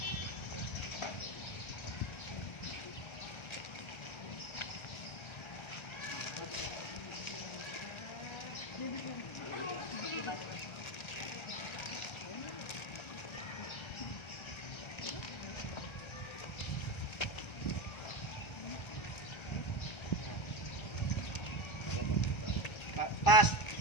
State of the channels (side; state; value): right; late; 1.3 ms